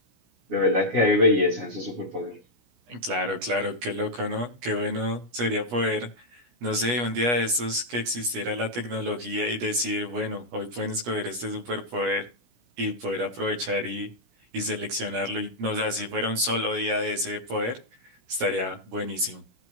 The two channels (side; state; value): left; late; 17 ms